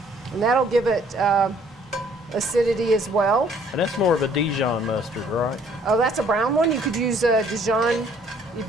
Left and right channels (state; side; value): normal; both; correlation 0.60